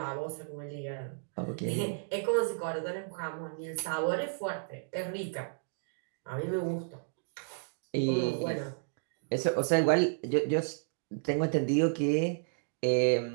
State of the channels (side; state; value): left; silent; digital silence